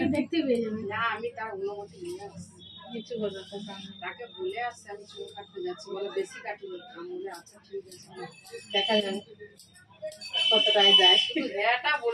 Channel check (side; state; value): both; identical; correlation 1.00